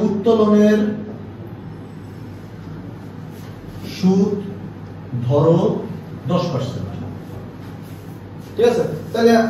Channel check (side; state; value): both; identical; correlation 1.00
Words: উত্তোলনের সুদ ধরো 10%, ঠিক আছে? তাহলে